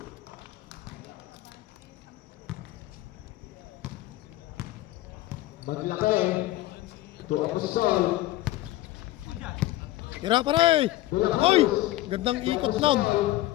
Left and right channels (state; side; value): quieter; right; 16.4 dB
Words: Maglaki. Ito Agustin. Tira pare. Oy, gandang ikot nun.